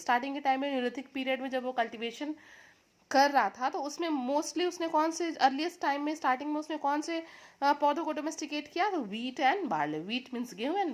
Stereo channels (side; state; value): both; identical; correlation 1.00